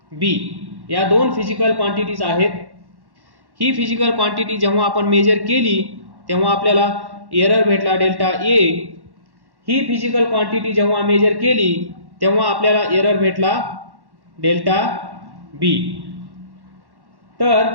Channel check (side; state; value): left; late; 1.1 ms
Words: B या दोन फिजिकल क्वांटिटीज आहेत. ही फिजिकल क्वांटिटी जेव्हा आपण मेजर केली तेव्हा आपल्याला एरर भेटला डेल्टा ए. ही फिजिकल क्वांटिटी जेव्हा मेजर केली तेव्हा आपल्याला एरर भेटला डेल्टा बी.